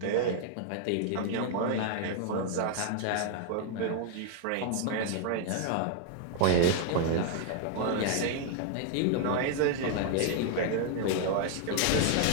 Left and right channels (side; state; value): both; different; correlation 0.00